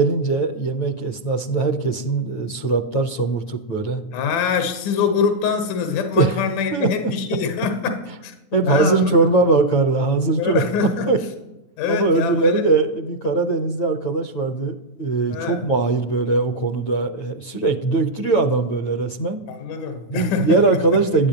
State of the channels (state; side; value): late; right; 8.9 ms